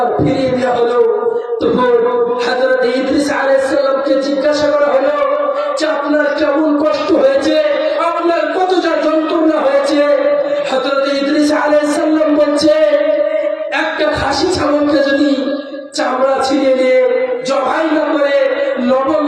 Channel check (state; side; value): identical; both; correlation 1.00